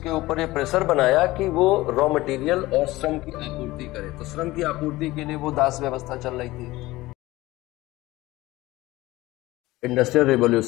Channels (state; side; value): quieter; right; 18.6 dB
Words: ऊपर ये प्रेशर बनाया कि वो रॉ मटेरियल और श्रम की आपूर्ति करे, तो श्रम की आपूर्ति के लिए वो दास व्यवस्था चल रही थी। इंडस्ट्रियल